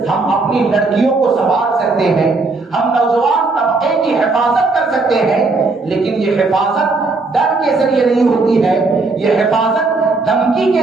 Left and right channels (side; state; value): left; quieter; 3.7 dB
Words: ہم اپنی لڑکیوں کو سنبھال سکتے ہیں، ہم نوجوان طبقے کی حفاظت کر سکتے ہیں، لیکن یہ حفاظت ڈر کے ذریعے نہیں ہوتی ہے، یہ حفاظت دھمکی